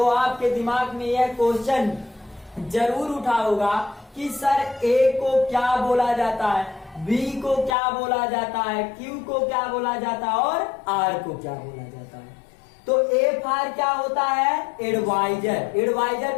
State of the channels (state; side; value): drops out; right; at 7.8 s